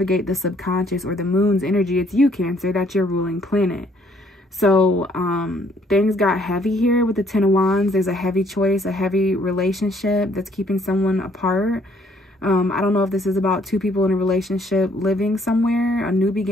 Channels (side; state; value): both; normal; correlation 0.64